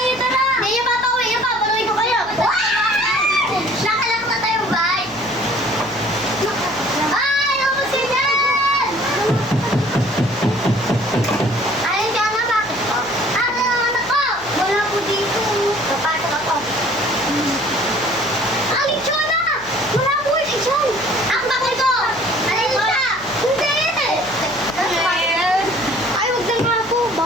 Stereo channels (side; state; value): left; noise; hum, 22 dB below the sound